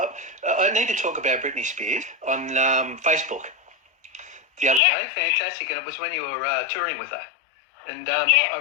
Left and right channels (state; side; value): drops out; right; at 4.8 s